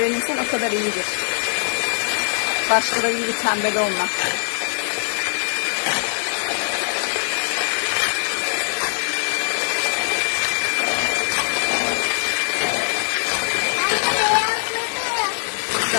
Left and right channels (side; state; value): right; silent; digital silence